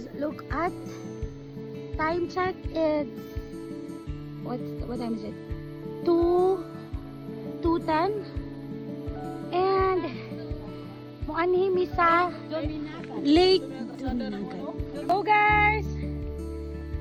look at time check. It's what time is it? 2:10 and muanhi mi sa Lake Duminagat. Go guys!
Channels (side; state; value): both; identical; correlation 1.00